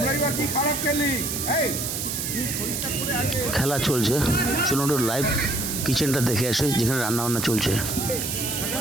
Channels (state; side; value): noise; right; hiss, 3 dB below the sound